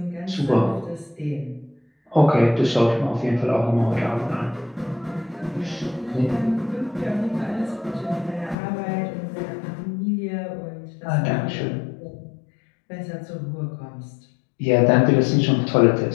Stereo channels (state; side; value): drops out; right; at 8.6 s